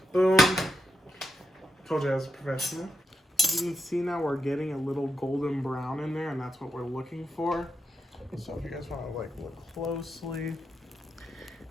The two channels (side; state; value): both; normal; correlation 0.84